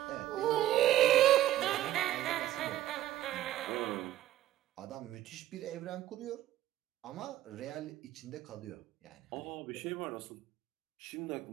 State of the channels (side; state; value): left; quieter; 13.6 dB